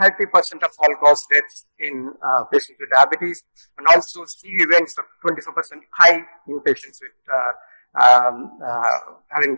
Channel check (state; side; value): inverted; both; correlation -1.00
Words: of all cause deaths in patients with diabetes, and also CV events are 24% high in patients with having